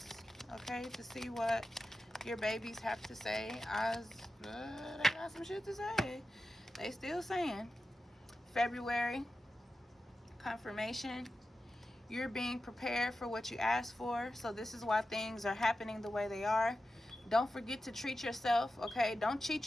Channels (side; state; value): both; normal; correlation 0.92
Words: okay, to see what your babies have to say. They got some shit to say. They still saying. February. Confirmation. You're being prepared for what you asked for. So this is why things are happening the way they are. Don't forget to treat yourself, okay? Don't